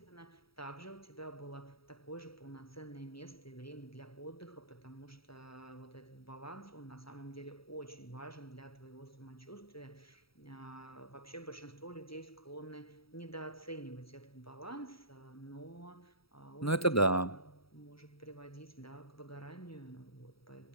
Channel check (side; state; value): right; late; 0.75 ms